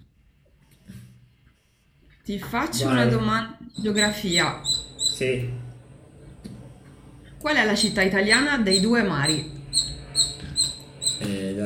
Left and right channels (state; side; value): identical; both; correlation 1.00